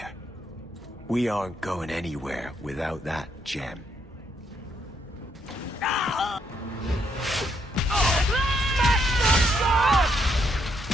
We aren't going anywhere without that gem.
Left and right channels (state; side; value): normal; both; correlation 0.74